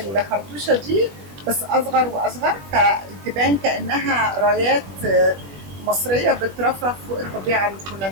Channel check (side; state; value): left; late; 21 ms